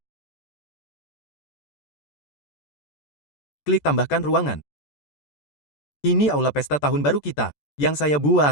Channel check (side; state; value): right; late; 14 ms